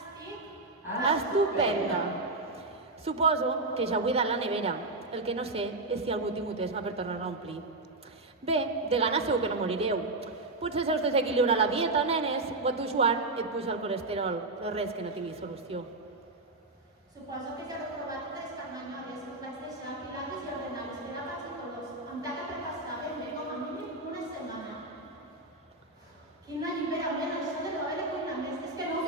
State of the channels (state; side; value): quieter; left; 3.0 dB